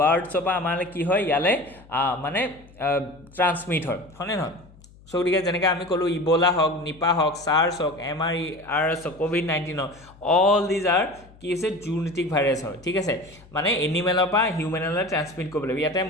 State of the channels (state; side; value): noise; left; hum, 24 dB below the sound